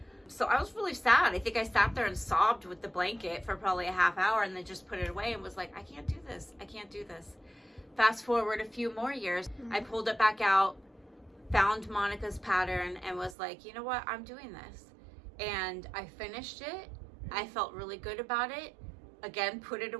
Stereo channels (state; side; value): drops out; left; at 13.4 s